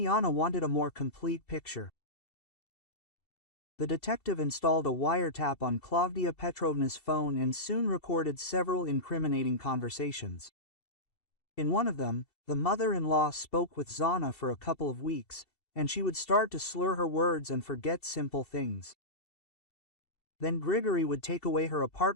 wanted a more complete picture. The detective installed a wiretap on Klavdia Petrovna's phone and soon recorded several incriminating conversations. In one of them, the mother-in-law spoke with Zana for a couple of weeks, and she would start to slur her words and forget simple things. Then Grigory would take away her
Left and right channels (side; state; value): right; late; 2.7 ms